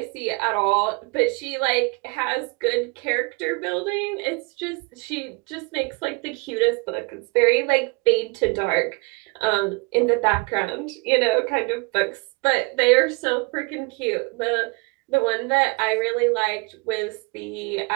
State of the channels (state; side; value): quieter; left; 29.4 dB